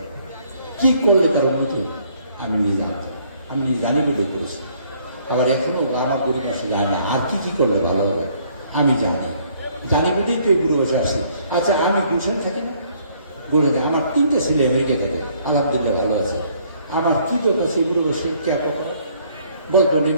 কি করলে তার উন্নতি হবে। আমি নিজে জানতাম, আমি নিজে জানি বলে করেছি। আবার এখনো আমার গরিব মানুষরা জানে না আর কি করলে ভালো হবে। আমি জানি বলেই তো এই বুড়ো বসে আসছে। আচ্ছা, আমি গুলশান থাকি না, বলে যায় আমার 3টে ছেলে আমেরিকা থাকে, আলহামদুলিল্লাহ ভালো আছে। আমার কি দরকার সেই বুড়ো বসে কে বলতো এই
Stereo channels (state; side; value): inverted; both; correlation -0.63